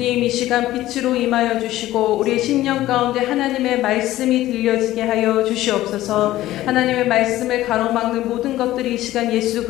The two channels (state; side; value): quieter; right; 15.2 dB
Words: 이 시간 빛으로 임하여 주시고 우리의 심령 가운데 하나님의 말씀이 들려지게 하여 주시옵소서. 하나님의 말씀을 가로막는 모든 것들이 이 시간 예수